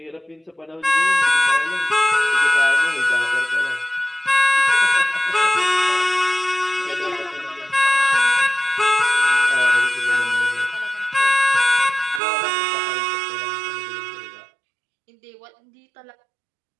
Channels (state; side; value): drops out; left; at 12.2 s